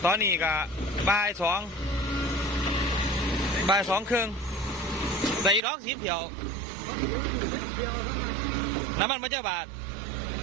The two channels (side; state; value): left; drops out; at 5.6 s